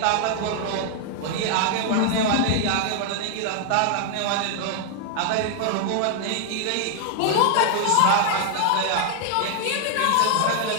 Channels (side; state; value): both; different; correlation 0.00